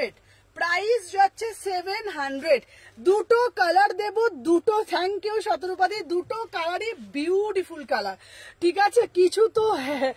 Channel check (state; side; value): identical; both; correlation 1.00